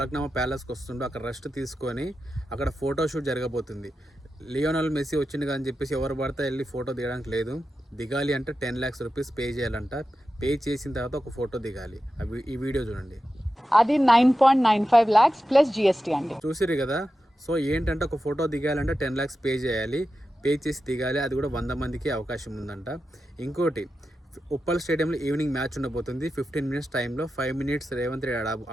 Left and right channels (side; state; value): both; normal; correlation 0.91